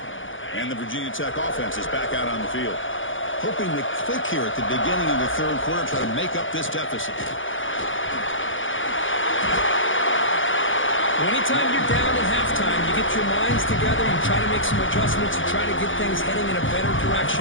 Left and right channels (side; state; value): right; late; 0.57 ms